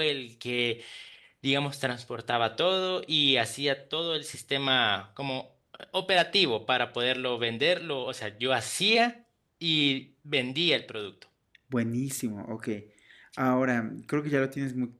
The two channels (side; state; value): both; identical; correlation 1.00